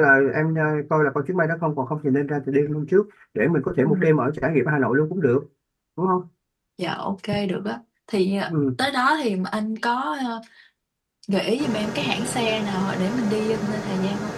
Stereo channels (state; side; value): identical; both; correlation 1.00